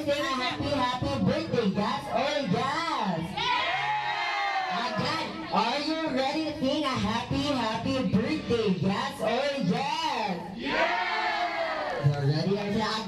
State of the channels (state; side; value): identical; both; correlation 1.00